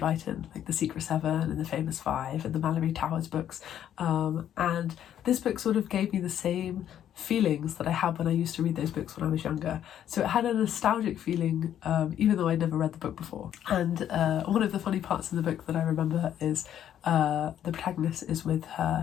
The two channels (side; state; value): right; quieter; 10.4 dB